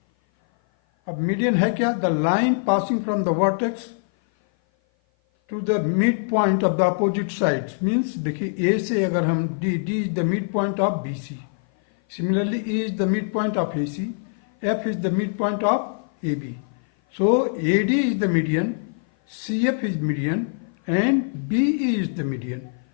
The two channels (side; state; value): right; silent; 56 dB below the other